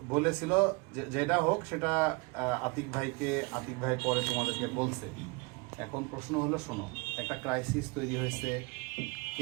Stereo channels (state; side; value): quieter; left; 28.7 dB